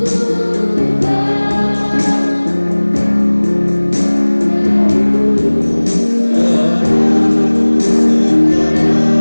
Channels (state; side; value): inverted; both; correlation -1.00